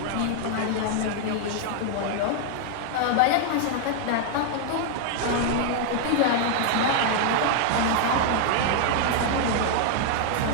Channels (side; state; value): both; different; correlation 0.00